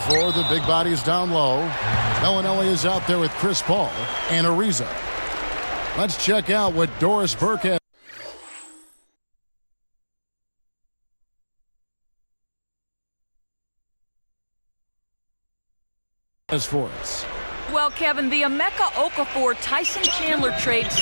the big bodies down low. Bellinelli is out there with Chris Paul and Ariza. Let's check out what Doris Burke has for us. Well, Kevin, the Emeka Okafor-Tyson Chandler trade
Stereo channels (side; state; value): both; inverted; correlation -1.00